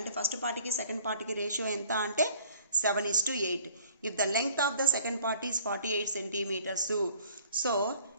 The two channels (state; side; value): inverted; both; correlation -0.54